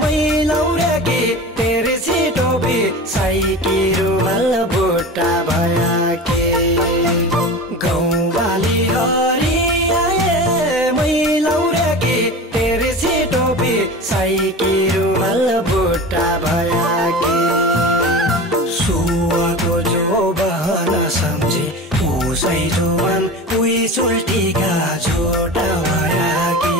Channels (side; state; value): both; normal; correlation 0.32